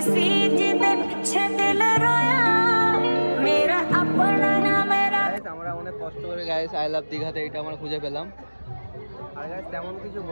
सी जिदे पीछे दिल रोया मेरा अपना ना मेरा আমরা অনেক কষ্ট করে গাইস আই লাভ দীঘাতে এটা আমরা খুঁজে পেলাম আর গাইস তেমন কিছু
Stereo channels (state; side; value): inverted; both; correlation -1.00